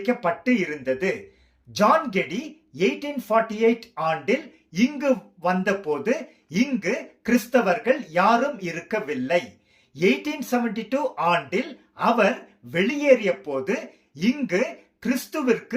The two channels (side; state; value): both; identical; correlation 1.00